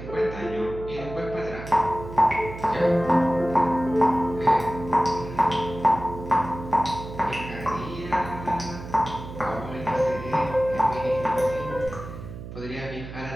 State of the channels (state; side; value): noise; right; hum, 11 dB below the sound